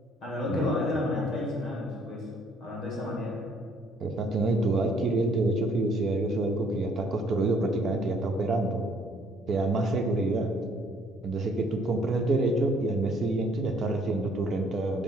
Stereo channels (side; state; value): both; normal; correlation 0.63